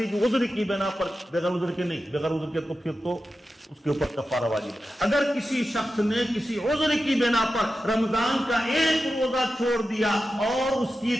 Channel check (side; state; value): both; normal; correlation 0.92